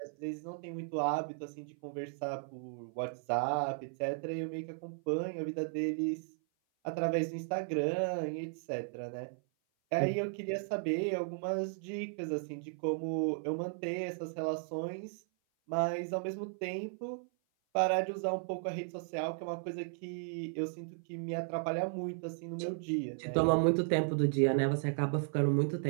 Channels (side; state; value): left; silent; 54 dB below the other